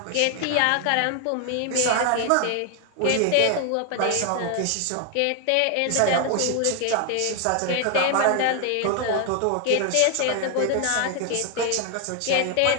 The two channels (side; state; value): both; different; correlation 0.00